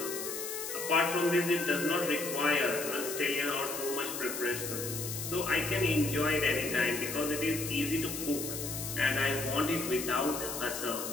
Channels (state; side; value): noise; left; hiss, 5 dB below the sound